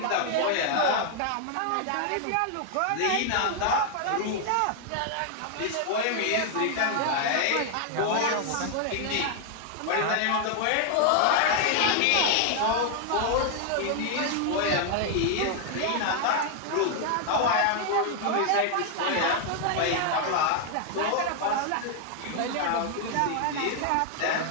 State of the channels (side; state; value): both; different; correlation 0.00